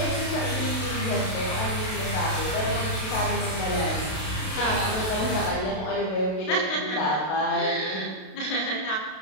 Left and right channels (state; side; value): late; right; 32 ms